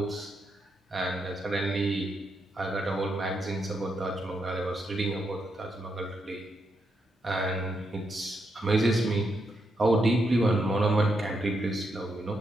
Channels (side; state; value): both; normal; correlation 0.81